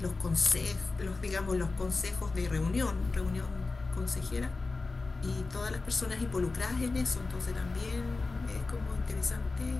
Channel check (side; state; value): right; quieter; 3.8 dB